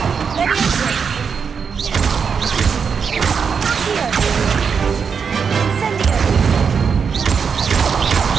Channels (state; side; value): quieter; left; 6.2 dB